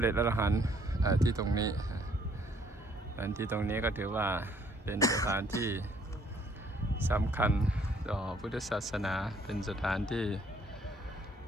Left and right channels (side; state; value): both; normal; correlation 0.63